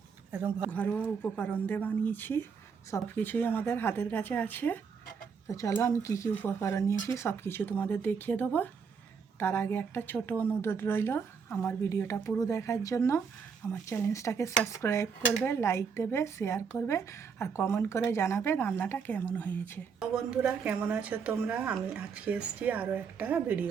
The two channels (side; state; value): left; quieter; 6.0 dB